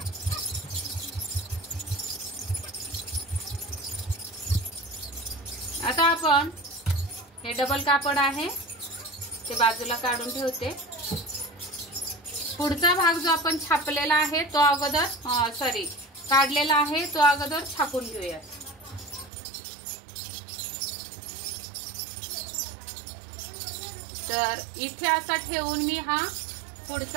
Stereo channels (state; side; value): drops out; left; at 19.3 s